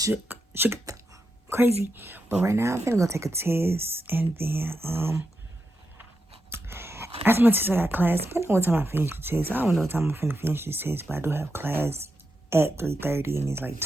shook, crazy. But right now, I'm finna go take a test, and then, after my test, I got class. Depending on what time I finish the test. I don't know what time I'm finna finish this test, but I do have class at 3:30, and it's like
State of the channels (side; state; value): both; normal; correlation 0.86